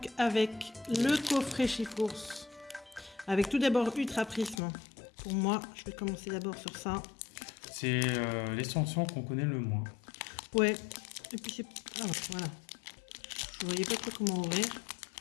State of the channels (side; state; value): right; drops out; at 4.6 s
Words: avec le coffret Chifours. Avec tout d'abord Ultra Prisme. Pour moi, je vais commencer d'abord sur ça. C'est l'extension qu'on connaît le moins. Ouais. Et puis c'est... Ah, voilà. Je voyais pas trop comment ouvrir.